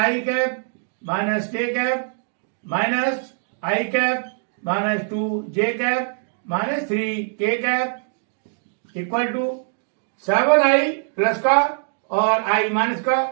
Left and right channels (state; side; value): silent; left; digital silence